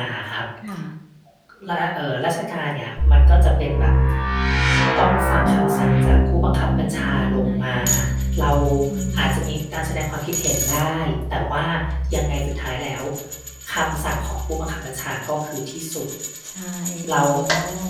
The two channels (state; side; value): identical; both; correlation 1.00